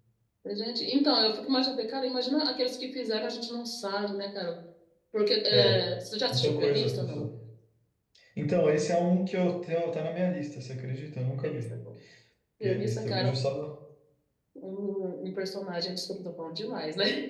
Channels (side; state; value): both; identical; correlation 1.00